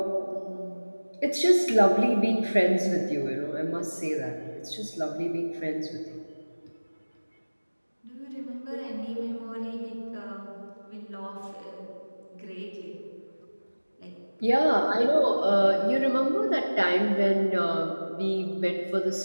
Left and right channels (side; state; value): both; inverted; correlation -1.00